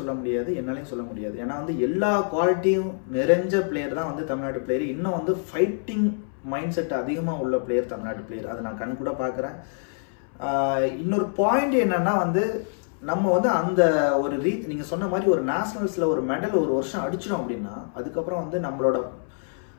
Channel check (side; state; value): right; silent; 61 dB below the other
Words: முடியாது, என்னாலையும் சொல்ல முடியாது. ஏன்னா வந்து எல்லா குவாலிட்டியும் நிறைஞ்ச பிளேயர் தான் வந்து தமிழ்நாட்டு பிளேயர். இன்னும் வந்து ஃபைட்டிங் மைண்ட் செட் அதிகமாக உள்ள பிளேயர் தமிழ்நாட்டு பிளேயர், அதை நான் கண் கூட பார்க்குறேன். இன்னொரு பாயிண்ட் என்னன்னா வந்து நம்ம வந்து அந்த ஒரு நீங்கள் சொன்ன மாதிரி ஒரு நேஷனல்ஸில் ஒரு மெடல் ஒரு வருஷம் அடிச்சிடும் அப்படின்னா அதுக்கப்புறம் வந்து நம்மளோட